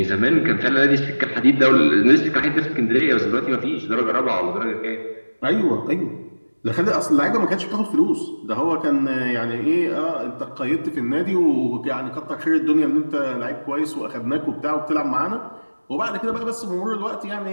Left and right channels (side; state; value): both; inverted; correlation -1.00